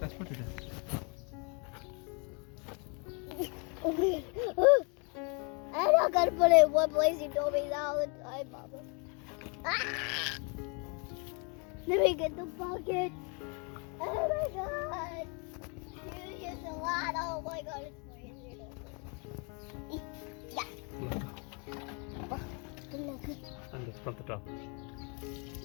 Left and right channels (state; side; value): quieter; right; 34.8 dB